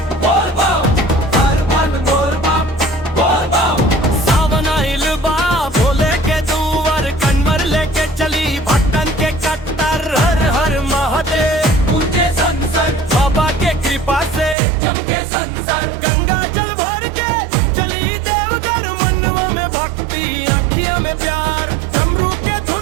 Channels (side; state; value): left; drops out; at 14.6 s